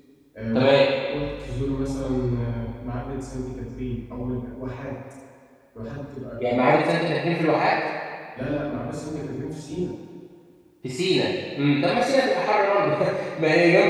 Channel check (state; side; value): identical; both; correlation 1.00